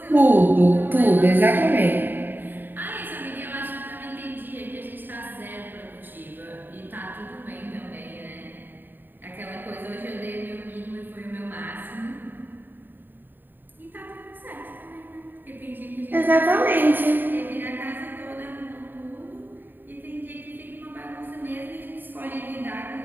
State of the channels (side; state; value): left; late; 0.092 ms